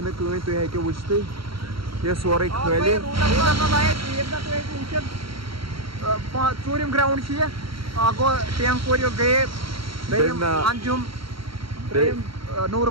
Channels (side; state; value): left; late; 0.74 ms